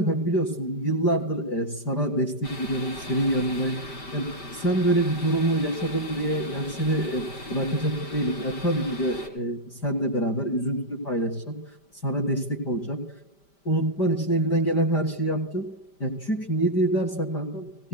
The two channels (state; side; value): late; right; 5.1 ms